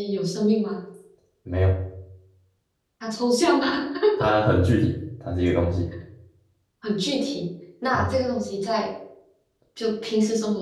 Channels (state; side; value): identical; both; correlation 1.00